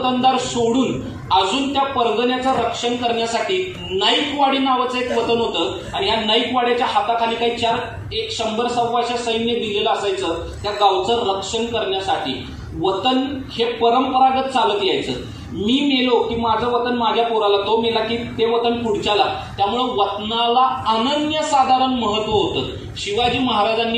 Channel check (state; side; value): identical; both; correlation 1.00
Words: सोडून अजून त्या परगण्याचं रक्षण करण्यासाठी नाईकवाडी नावाचं एक वतन होतं. आणि या नाईकवाड्याच्या हाताखाली काही 100-125 सैन्य दिलेलं असायचं त्या गावचं रक्षण करण्यासाठी. वतन हे परंपरागत चालत यायचं. मी मेलो की माझं वतन माझ्या पोराला, तो मेला की ते वतन पुढच्याला. त्यामुळं वतनाला अनन्यसाधारण महत्व होतं. शिवाजी